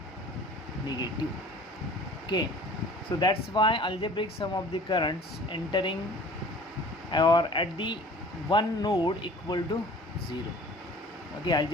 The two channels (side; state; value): both; normal; correlation 0.47